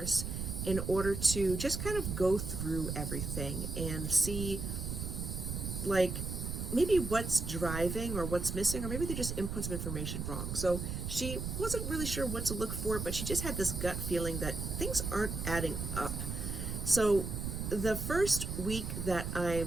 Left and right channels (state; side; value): noise; right; rumble, 4 dB below the sound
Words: in order to just kind of go through everything and see, like, maybe what's driving or what's missing, or maybe they just input some information wrong. So she wasn't really sure what to look for, but she just had this gut feeling that things aren't adding up. So the first week that